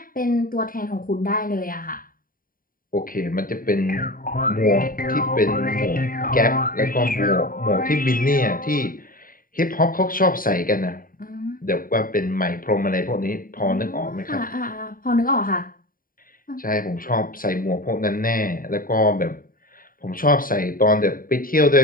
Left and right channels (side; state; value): right; late; 0.41 ms